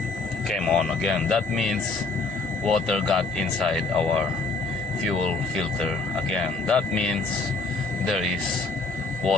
came on again. That means water got inside our fuel filter again. That means there is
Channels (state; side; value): quieter; right; 3.7 dB